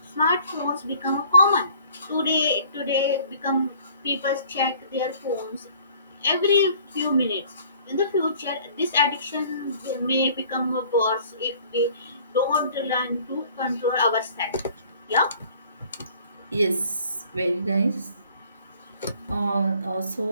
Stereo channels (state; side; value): inverted; both; correlation -0.54